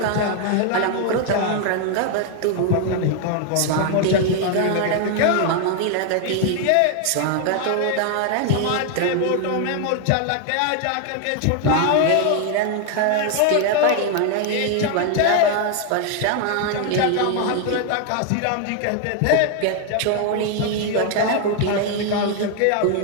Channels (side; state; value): both; different; correlation 0.00